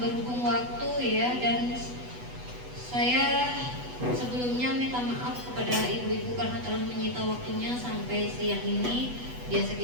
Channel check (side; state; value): left; late; 8.1 ms